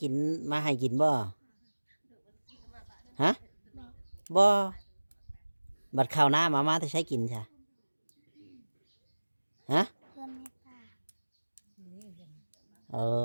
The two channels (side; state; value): both; inverted; correlation -1.00